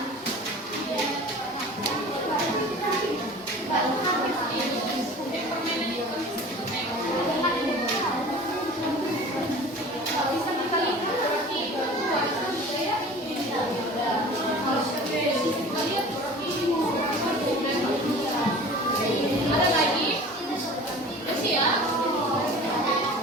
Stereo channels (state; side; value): normal; both; correlation 0.41